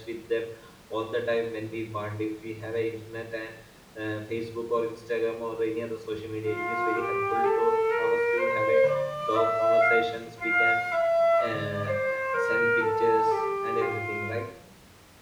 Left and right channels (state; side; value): identical; both; correlation 1.00